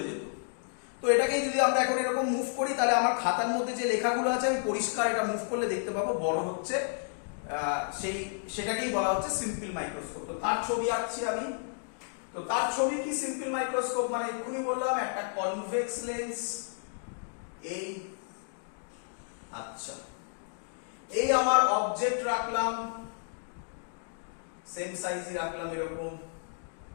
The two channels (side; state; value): right; silent; digital silence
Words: যেত। তো এটাকেই যদি আমরা এখন এরকম মুভ করি, তাহলে আমার খাতার মধ্যে যে লেখাগুলো আছে আমি পরিষ্কার এটা মুভ করলে দেখতে পাবো বড় হচ্ছে, সেটাকেই বলা হচ্ছে সিম্পল মাইক্রোস্কোপ। তো তার ছবি আঁকছি আমি। তো তার ছবি কি সিম্পল মাইক্রোস্কোপ? মানে এক্ষুনি বললাম একটা কনভেক্স লেন্স, এই, আচ্ছা, এই আমার অবজেক্ট রাখলাম, সেম সাইজই রাখলাম এরকম,